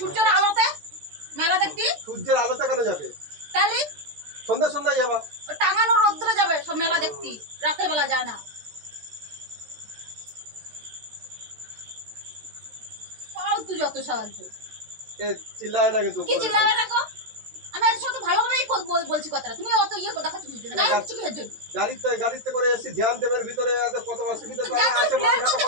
আলোতে মেলা দেখতি? সূর্যের আলোতে কেন যাবে? তাহলে সন্ধ্যা সন্ধ্যায় যাবা। টাঙানো রোদ্রে যাবে সব মেলা দেখতি, রাতের বেলা যায় না। ফালতু যত সাহায্য। এ চিল্লায় না কিন্তু কি চিল্লাবে না গো? আমি এর সাথে ভালোভাবেই বলছি কথাটা, তুমি অত ইয়ে দেখাচ্ছ কিছু না, গায়ে কিছু কিসের জন্য? গাড়িতে করে এসে জ্যাম দেবের ভিতরে এত কত অসুবিধা, তারা আসে মানুষ এত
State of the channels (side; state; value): left; late; 13 ms